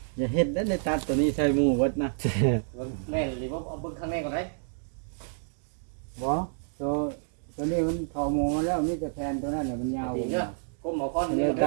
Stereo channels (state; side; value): silent; left; digital silence